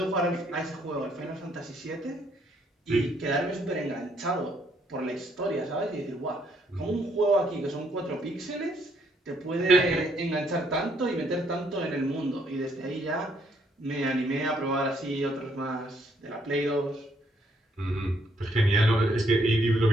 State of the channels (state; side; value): normal; both; correlation 0.69